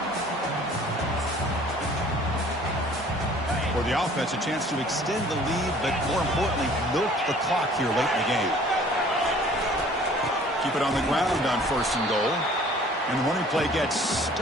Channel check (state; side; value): normal; both; correlation 0.52